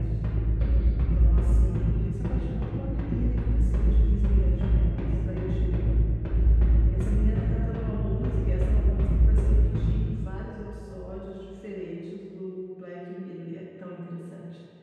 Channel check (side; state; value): both; identical; correlation 1.00